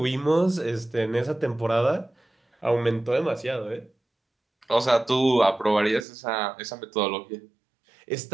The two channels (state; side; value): drops out; left; at 6.1 s